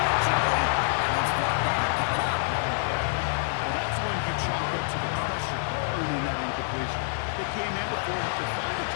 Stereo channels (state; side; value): silent; right; digital silence